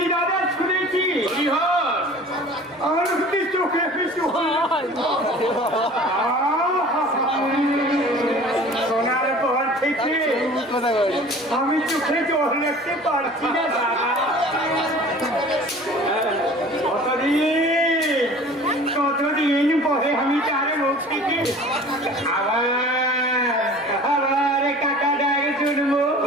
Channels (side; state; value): both; normal; correlation 0.44